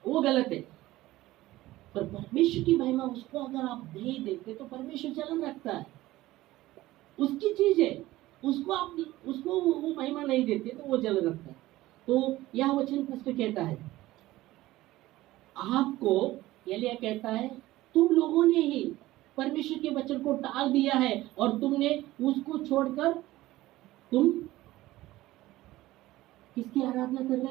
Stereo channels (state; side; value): quieter; left; 17.0 dB